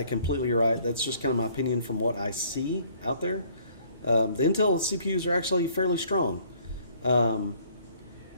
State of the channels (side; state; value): both; inverted; correlation -0.59